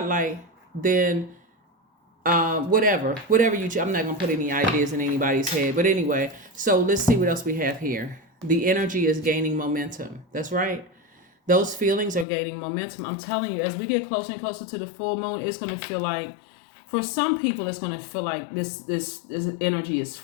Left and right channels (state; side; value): drops out; right; at 12.2 s